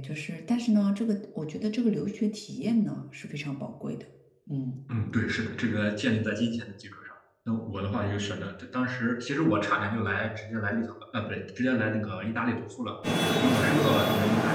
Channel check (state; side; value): identical; both; correlation 1.00